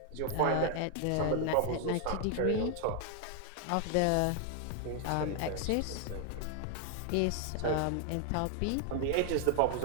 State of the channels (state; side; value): different; both; correlation 0.00